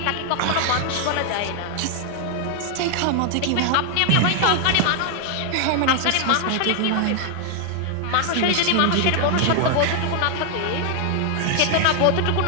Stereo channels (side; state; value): both; different; correlation 0.00